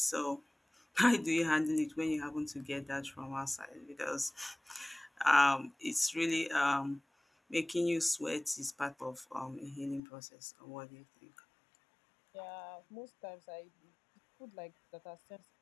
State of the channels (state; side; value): drops out; right; at 10.0 s